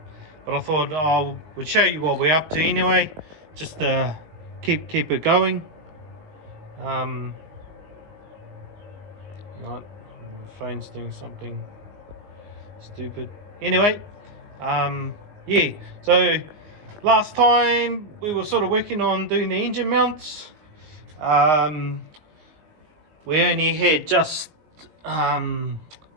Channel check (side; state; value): left; late; 19 ms